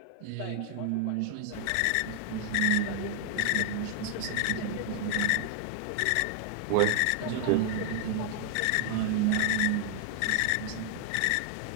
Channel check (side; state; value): both; different; correlation 0.00